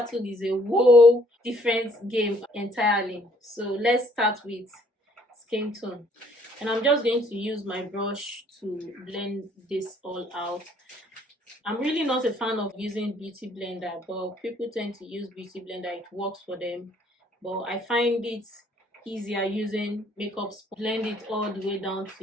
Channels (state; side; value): normal; both; correlation 0.63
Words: is a whole different game entirely. So let's start with skin tone. And I'm just going to use my brush to blend this all out. I'm really not a fan of using beauty blender, but people tend to use beauty blender. It works for them. But I find it easier using makeup sponge. Blend it all the way down